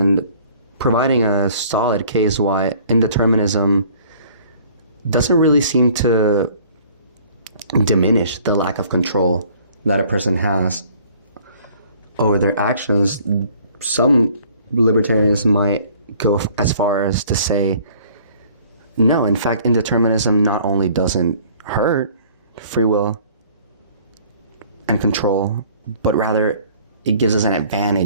providing a solid case why indeterminism doesn't really seem to diminish the lack of control that a person has over their actions, some libertarians might go as far as to say, no, in fact, indeterminism not only doesn't hurt free will and control, but rather it gives us an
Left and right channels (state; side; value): inverted; both; correlation -0.55